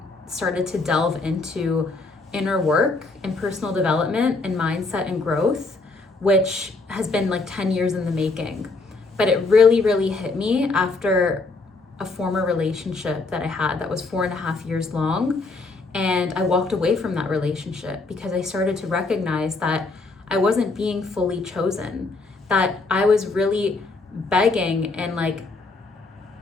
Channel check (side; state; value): right; quieter; 3.6 dB